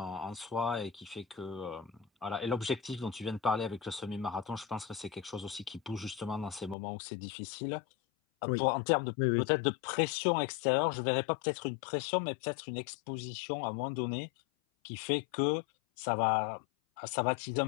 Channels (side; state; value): right; drops out; at 6.8 s